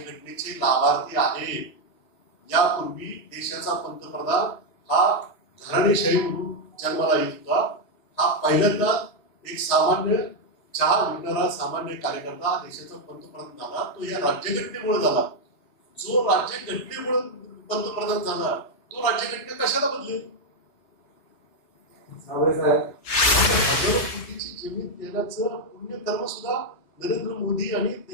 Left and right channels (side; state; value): right; late; 3.3 ms